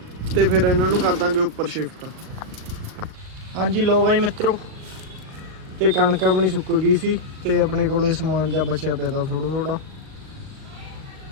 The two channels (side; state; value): left; late; 38 ms